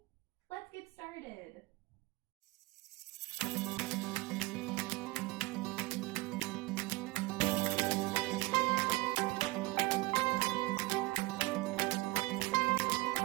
Let's get started.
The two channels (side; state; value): left; quieter; 21.8 dB